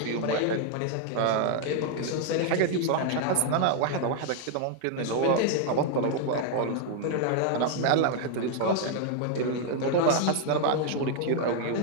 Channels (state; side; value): different; both; correlation 0.00